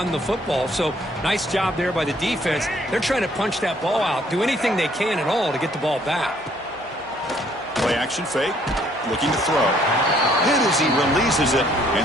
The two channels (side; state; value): both; normal; correlation 0.64